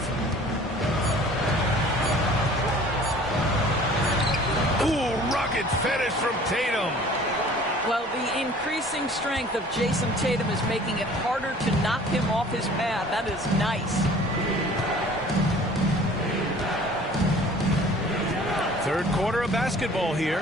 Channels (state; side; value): normal; both; correlation 0.49